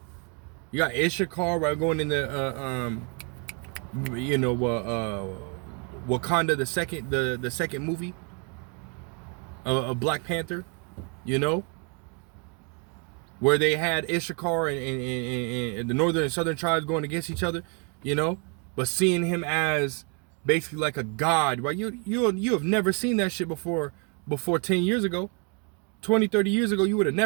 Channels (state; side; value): quieter; left; 36.6 dB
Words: You got Issachar, right, going in the You know, Wakanda, the second movie of Black Panther, you know, where they had Issachar and the northern and southern tribes going against each other, you know, but seeing him as basically like a god, right? You have never seen that shit before 10 years ago, 20, 30 years ago. You would have